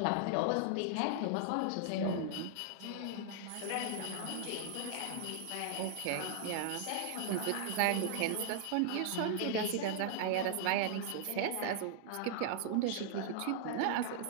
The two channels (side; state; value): both; different; correlation -0.01